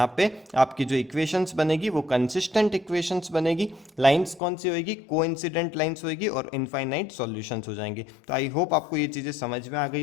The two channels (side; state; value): right; drops out; at 4.4 s